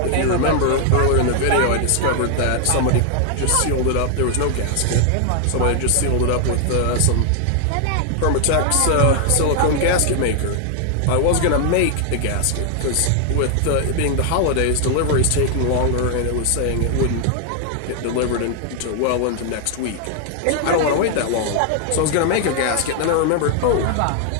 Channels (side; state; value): both; different; correlation 0.00